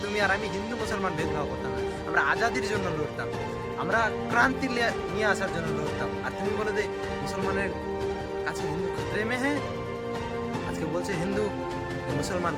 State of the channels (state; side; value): identical; both; correlation 1.00